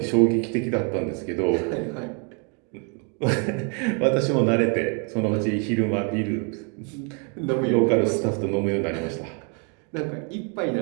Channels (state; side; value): quieter; left; 37.7 dB